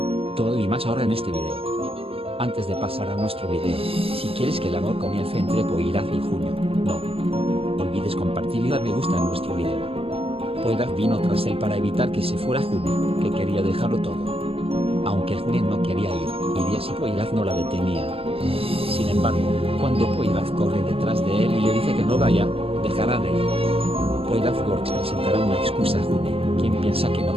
Todo y más ahora en este video. Antes de pasar a nuestro video, si quieres que el amor comience entre Poiraf y Junio, no olvides compartir y dar me gusta en nuestro video. Poiraf vino tras él para evitar que se fuera June, que quería dejarlo todo. Aunque June no quería ir, iría si Poiraf no la detenía. Sin embargo, cuando Poiraf corre detrás de él y le dice que no vaya, dejará de ir. Poiraf Works presentará una excusa a June, quien piensa que no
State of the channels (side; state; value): left; late; 0.28 ms